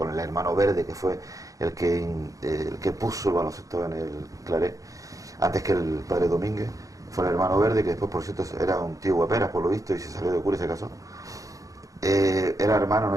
el hermano Verde, que fue el que puso el baloncesto en el Claret, antes que el padre Domínguez. Fue el hermano Verde, que después, por cierto, era un tío guaperas, por lo visto, y se salió de cura y se casó. Era hermano, no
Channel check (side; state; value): left; late; 0.16 ms